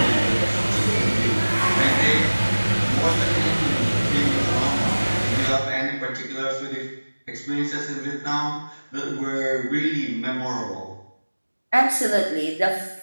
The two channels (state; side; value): inverted; both; correlation -1.00